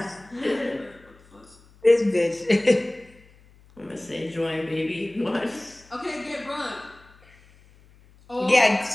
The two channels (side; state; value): left; noise; hum, 27 dB below the sound